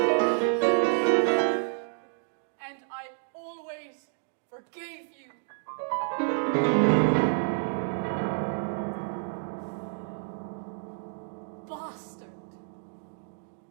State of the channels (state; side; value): silent; left; digital silence